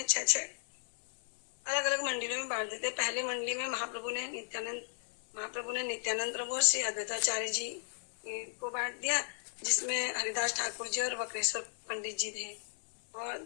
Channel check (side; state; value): right; silent; 55 dB below the other